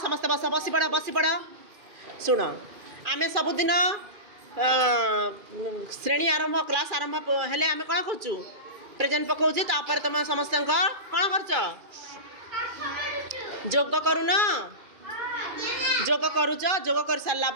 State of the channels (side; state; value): left; late; 2.4 ms